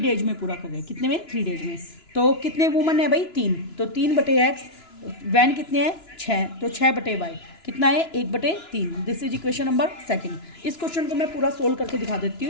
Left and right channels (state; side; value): late; right; 2.9 ms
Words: डेज में पूरा कर रहे हैं। कितने में? 3 डेज में। तो कितने वुमन है भाई? 3, तो 3/x, वैन कितने हैं? 6, तो 6/y कितना है? 1/3। This is equation number second. इस क्वेश्चन को मैं पूरा सोल्व करके दिखा देती